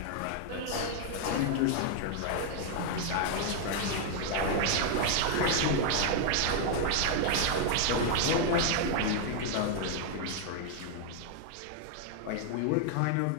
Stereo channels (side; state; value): both; different; correlation 0.00